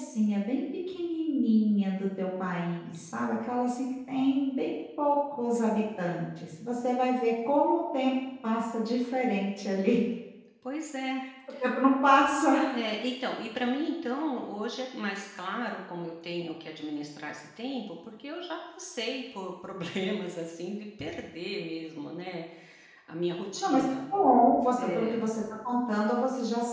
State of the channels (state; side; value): identical; both; correlation 1.00